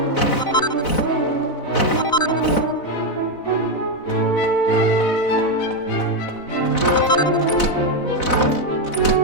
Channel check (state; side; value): late; right; 4.0 ms